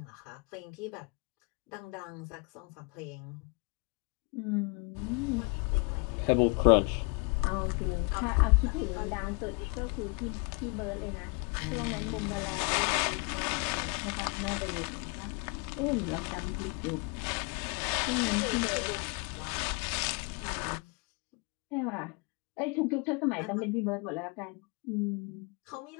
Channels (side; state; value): right; quieter; 31.3 dB